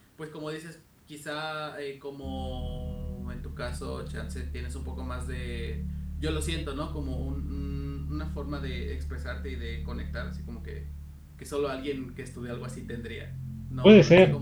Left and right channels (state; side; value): identical; both; correlation 1.00